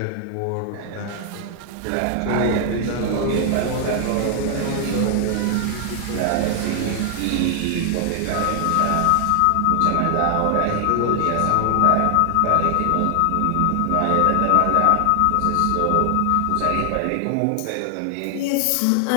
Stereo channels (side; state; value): both; different; correlation 0.00